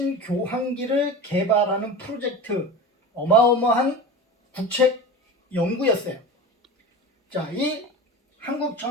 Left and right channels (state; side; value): normal; both; correlation 0.31